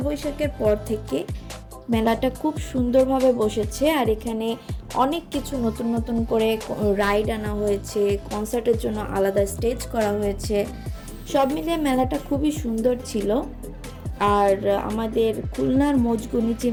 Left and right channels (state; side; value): identical; both; correlation 1.00